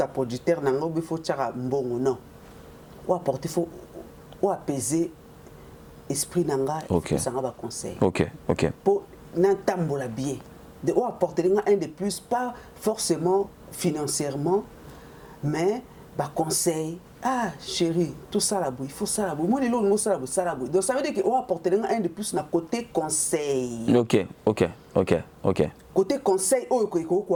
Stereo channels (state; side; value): identical; both; correlation 1.00